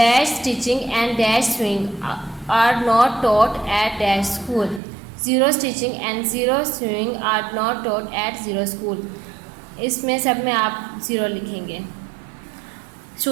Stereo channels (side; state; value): left; drops out; at 4.8 s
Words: stitching and dash swing are not taught at dash school. 0 stitching and 0 swing are not taught at 0 school. इसमें सब में आप 0 लिखेंगे।